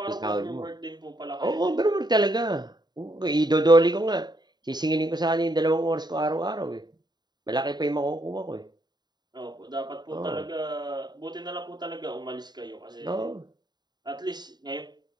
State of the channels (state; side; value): late; left; 0.20 ms